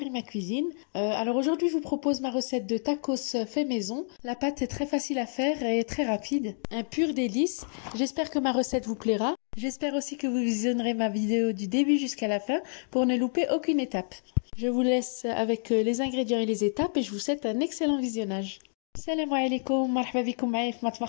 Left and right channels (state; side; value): silent; right; digital silence